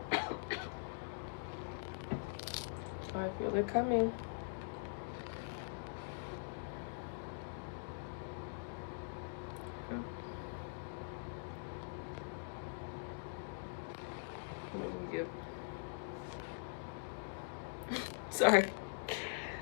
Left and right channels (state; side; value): silent; right; digital silence